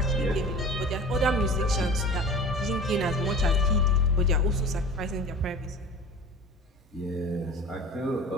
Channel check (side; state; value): both; normal; correlation 0.39